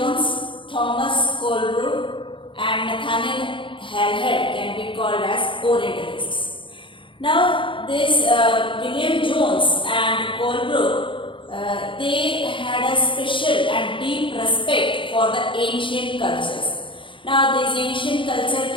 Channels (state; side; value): late; right; 0.25 ms